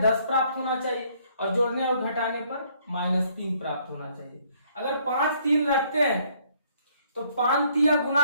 10 प्राप्त होना चाहिए और जोड़ने और घटाने पर -3 प्राप्त होना चाहिए। अगर 5 3 रखते हैं तो 5 3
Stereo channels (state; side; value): inverted; both; correlation -0.65